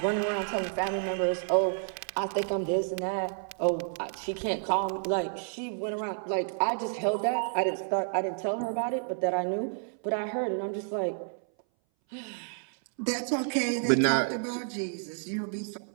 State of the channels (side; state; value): left; silent; 58 dB below the other